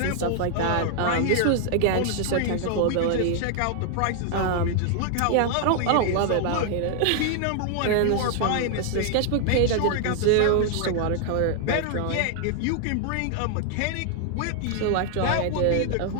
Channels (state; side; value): different; both; correlation 0.00